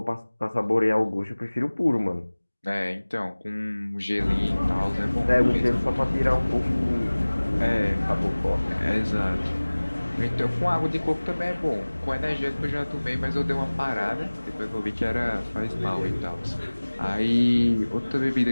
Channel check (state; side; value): inverted; both; correlation -1.00